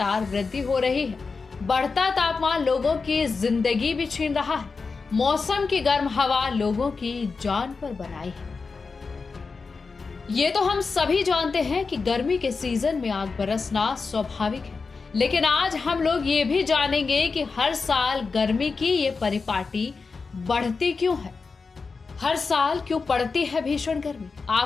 वृद्धि हो रही है। बढ़ता तापमान लोगों की जिंदगी भी छीन रहा है। मौसम की गर्म हवा लोगों की जान पर बनाई है। ये तो हम सभी जानते हैं कि गर्मी के सीजन में आग बरसना स्वाभाविक है, लेकिन आज हम लोग ये भी जानेंगे कि हर साल गर्मी की ये परिपाटी बढ़ती क्यों है। हर साल क्यों पड़ती है भीषण गर्मी।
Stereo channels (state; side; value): quieter; right; 4.6 dB